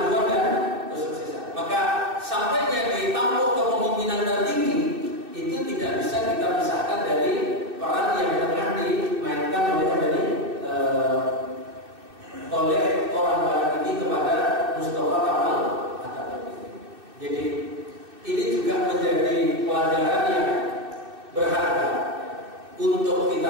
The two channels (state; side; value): late; left; 2.6 ms